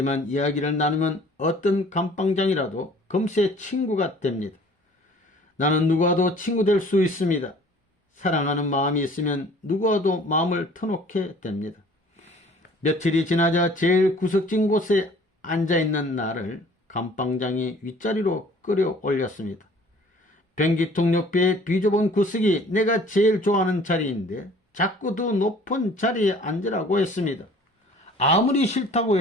이야기를 나누면 어떤 감방장이라도 금세 친구가 됩니다. 나는 누구와도 친구 될 수 있습니다. 사랑하는 마음이 있으면 누구와도 마음을 터놓게 됩니다. 며칠이 지나자 제일 구석진 곳에 앉아있는 나를 감방장이 윗자리로 끌어올렸습니다. 변기통 옆에 비좁은 구석이 내가 제일 좋아하는 자리인데 자꾸 더 높은 자리에 앉으라고 했습니다. 아무리 싫다고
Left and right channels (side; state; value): both; normal; correlation 0.51